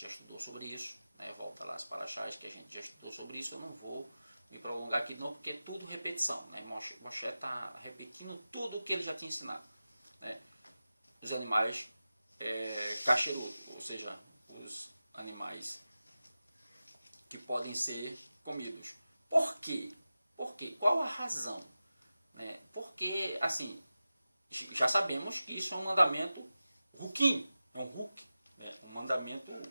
já estudou sobre isso, né? Volta lá as paraxás que a gente já estudou sobre isso. Eu não vou me prolongar aqui não, porque é tudo repetição. Né? Moshe está repetindo tudo o que ele já tinha ensinado. Né? Os animais kasherut, ou seja, os animais que podem ser comidos. Por quê? Por quê? Qual a razão? Né? Porque, assim, já sabemos que isso é um mandamento ruquim, é um ruque, né? Um mandamento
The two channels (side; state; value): both; inverted; correlation -0.94